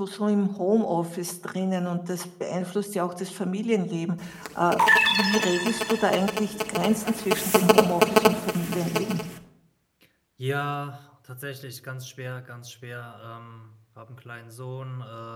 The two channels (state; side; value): identical; both; correlation 1.00